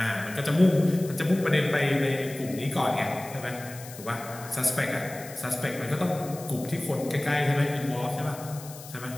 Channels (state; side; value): noise; left; hiss, 16 dB below the sound